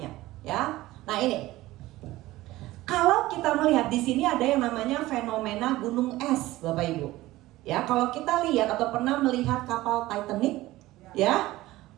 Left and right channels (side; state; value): left; quieter; 17.4 dB